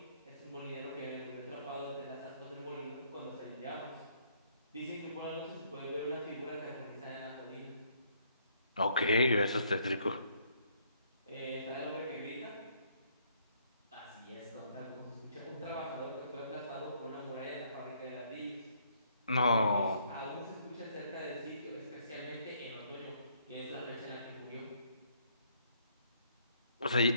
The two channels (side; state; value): both; inverted; correlation -0.67